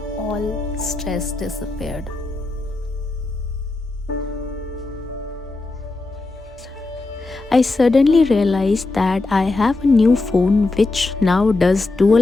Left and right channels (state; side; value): quieter; right; 3.2 dB